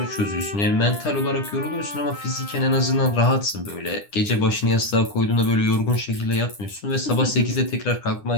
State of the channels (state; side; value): late; right; 9.9 ms